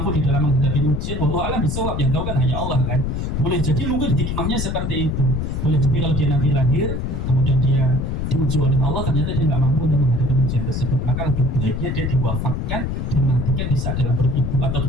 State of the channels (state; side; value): noise; left; rumble, 2 dB below the sound